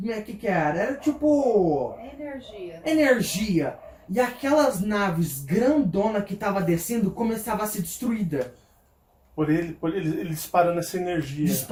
que era. Era tipo É energia. energia. E aquelas naves grandona que tava descendo começava a ser destruída. Por ele disparando essa energia.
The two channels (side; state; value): both; identical; correlation 1.00